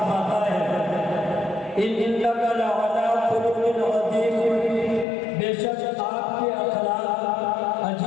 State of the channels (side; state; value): right; drops out; at 5.1 s